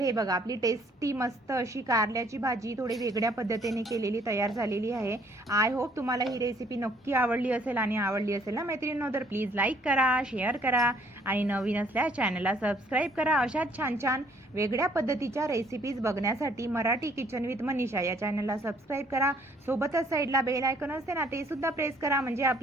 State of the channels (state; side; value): normal; both; correlation 0.62